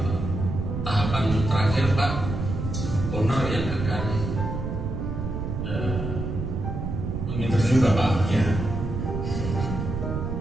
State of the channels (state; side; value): noise; right; rumble, 4 dB below the sound